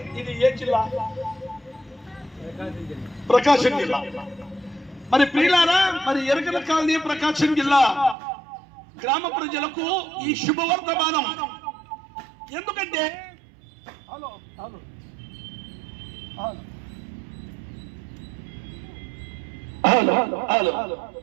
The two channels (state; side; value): drops out; left; at 8.2 s